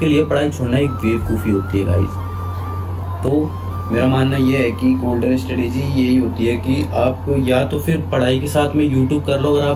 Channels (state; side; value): identical; both; correlation 1.00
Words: लिए पढ़ाई छोड़ना एक बेवकूफ़ी होती है गाइस। तो मेरा मानना ये है कि गोल्डन स्ट्रेटेजी यही होती है कि आप या तो फिर पढ़ाई के साथ में यूट्यूब कर लो अगर